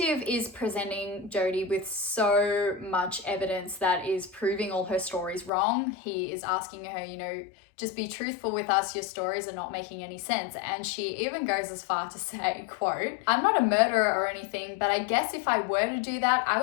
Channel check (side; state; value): right; drops out; at 5.5 s